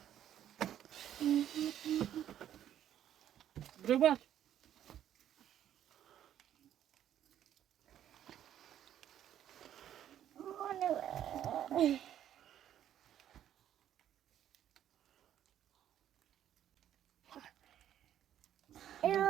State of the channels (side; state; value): left; quieter; 10.9 dB